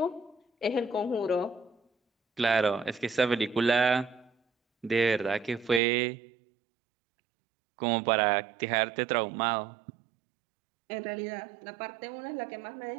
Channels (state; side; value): drops out; left; at 5.8 s